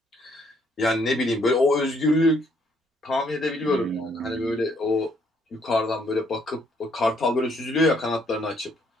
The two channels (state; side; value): normal; both; correlation 0.69